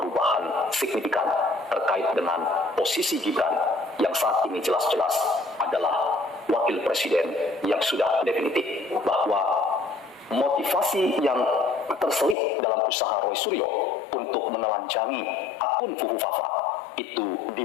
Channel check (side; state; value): right; drops out; at 12.4 s